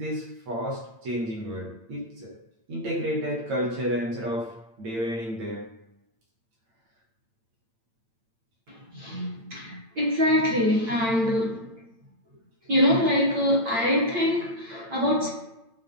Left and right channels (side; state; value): left; late; 8.8 ms